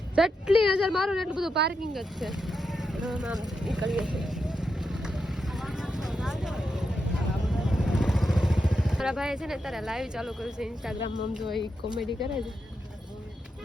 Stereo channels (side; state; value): both; normal; correlation 0.85